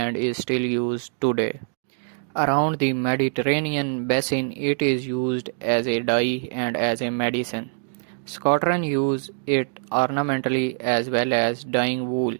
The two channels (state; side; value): silent; left; digital silence